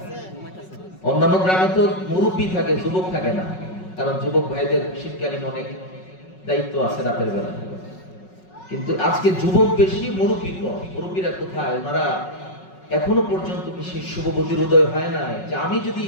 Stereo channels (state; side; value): late; right; 5.4 ms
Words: অন্যান্য গ্রামে তো মুরব্বী থাকে, যুবক থাকে না, কারণ যুবক ভাইদের শীতকালীন অনেক দায়িত্ব আছে রাতের বেলা। কিন্তু আজকে যুবক বেশি, মুরব্বী কম। মুরব্বীরা কোথায়? ওনারা এখনো পর্যন্ত কি সেই শুভবুদ্ধির উদয় হয় না যে আমি যদি